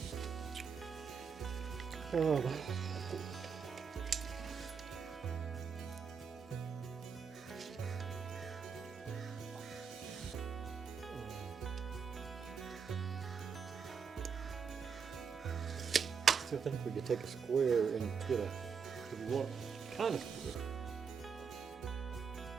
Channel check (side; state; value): left; quieter; 6.1 dB